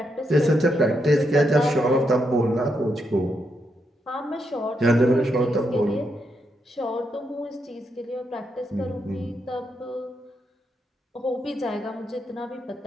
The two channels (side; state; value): both; normal; correlation 0.81